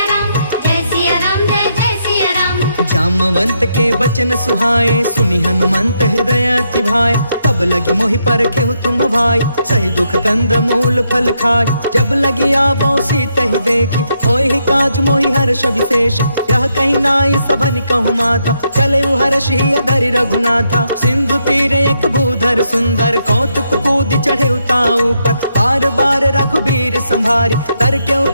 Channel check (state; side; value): inverted; both; correlation -0.79